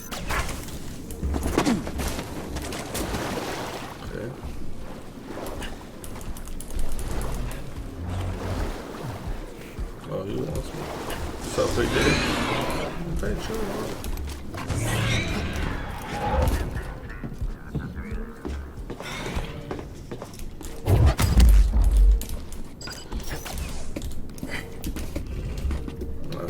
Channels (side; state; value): both; identical; correlation 1.00